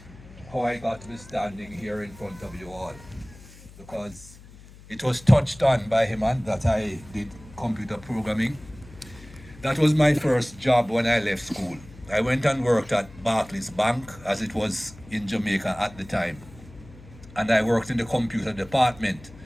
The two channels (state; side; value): noise; left; hum, 20 dB below the sound